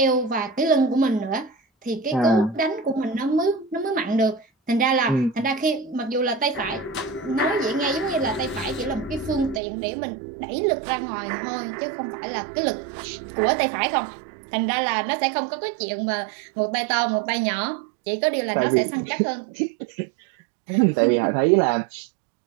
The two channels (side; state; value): left; drops out; at 9.6 s